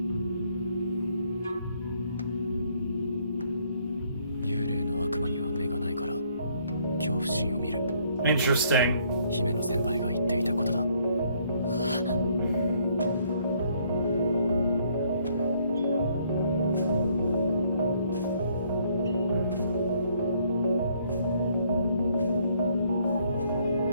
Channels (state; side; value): inverted; both; correlation -0.66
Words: Interesting. 姫の先輩が言っていたことだ。